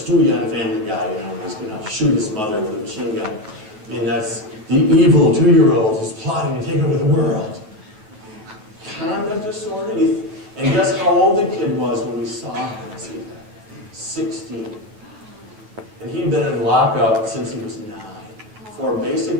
on Family Guy, when he's gonna shoot his mother with a machine gun. I mean, that's the evil 2-year-old who's plotting to take over the world. Conduct disorder, and guess how old the kid was when we saw him? See that? 16. And he'd been in lockup since he was 9 for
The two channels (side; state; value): left; late; 9.3 ms